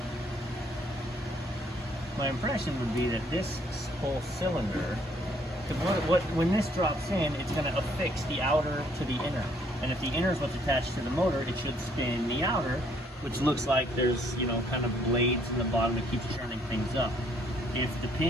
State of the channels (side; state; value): both; normal; correlation 0.65